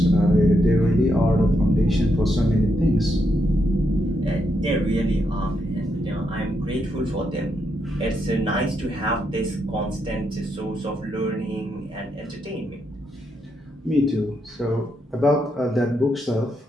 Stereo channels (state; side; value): normal; both; correlation 0.80